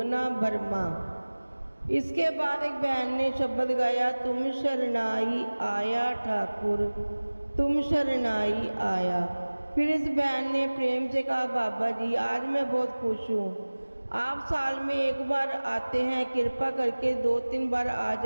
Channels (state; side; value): inverted; both; correlation -1.00